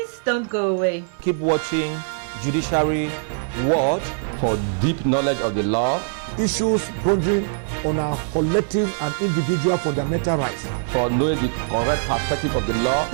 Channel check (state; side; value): silent; left; 60 dB below the other